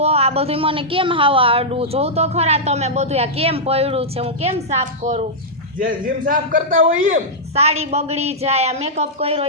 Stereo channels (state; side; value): normal; both; correlation -0.09